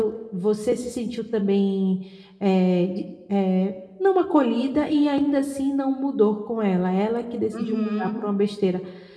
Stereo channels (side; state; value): both; identical; correlation 1.00